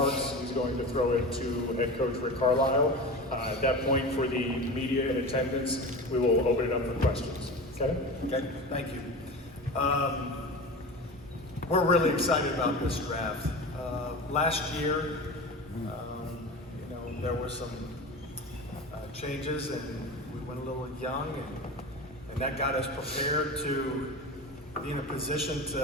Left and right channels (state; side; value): normal; both; correlation 0.30